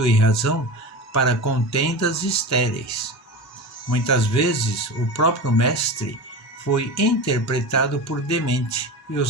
razão para contendas estéreis. Muitas vezes o próprio Mestre foi interpretado por demente e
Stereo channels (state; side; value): normal; both; correlation 0.28